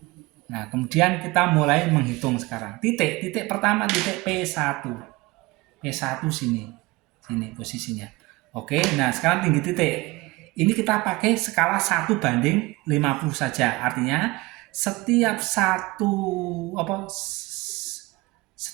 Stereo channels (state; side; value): quieter; left; 22.0 dB